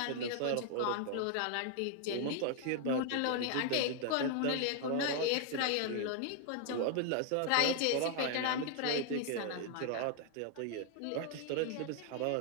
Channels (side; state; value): both; different; correlation 0.00